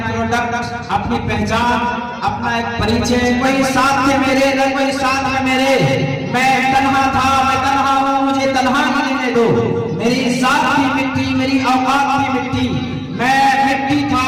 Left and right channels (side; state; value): both; identical; correlation 1.00